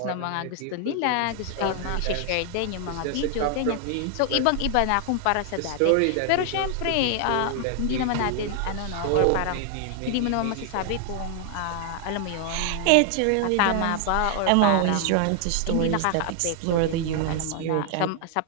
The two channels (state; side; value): different; both; correlation 0.00